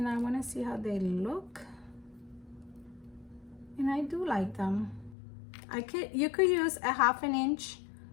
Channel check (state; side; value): drops out; right; at 5.2 s